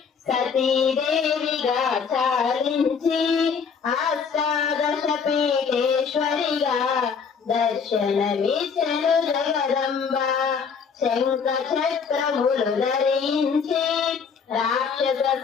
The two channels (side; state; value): right; quieter; 6.1 dB